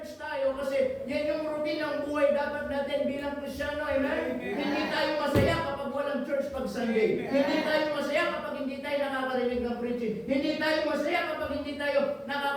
tayo kasi yan yung routine ng buhay dapat natin bilang Kristyano, amen? Hindi tayo masaya kapag walang church pag Sunday. Hindi tayo masaya kapag hindi tayo nakakarinig ng preaching. Hindi tayo masaya kapag hindi tayo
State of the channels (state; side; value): identical; both; correlation 1.00